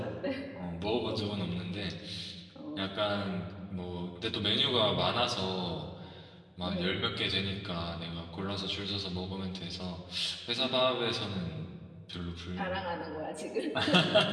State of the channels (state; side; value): identical; both; correlation 1.00